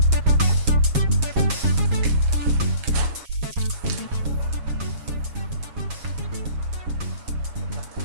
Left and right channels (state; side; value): late; left; 7.3 ms